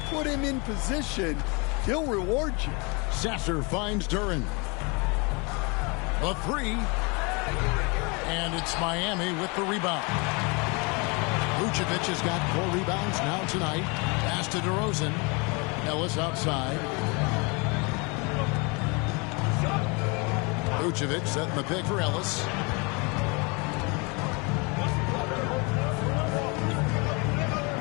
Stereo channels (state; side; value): quieter; right; 30.0 dB